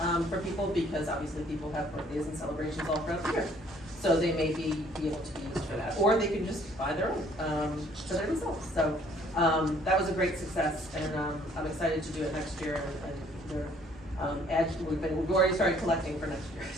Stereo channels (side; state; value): both; normal; correlation 0.60